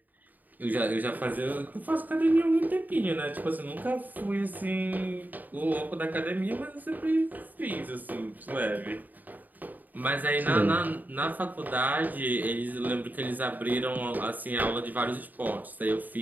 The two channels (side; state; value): left; late; 0.084 ms